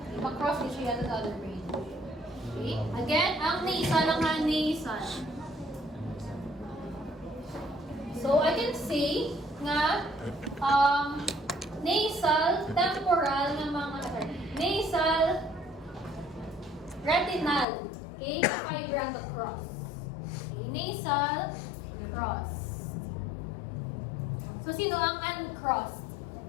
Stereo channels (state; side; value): drops out; right; at 17.7 s